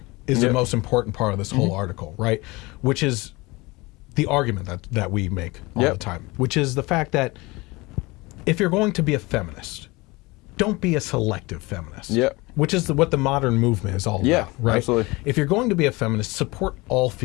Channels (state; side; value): quieter; right; 23.3 dB